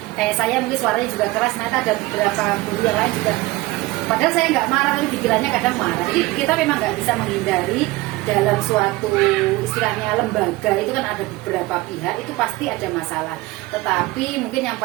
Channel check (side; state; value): left; quieter; 20.1 dB